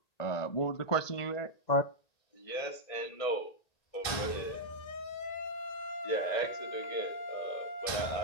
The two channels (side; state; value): right; late; 1.9 ms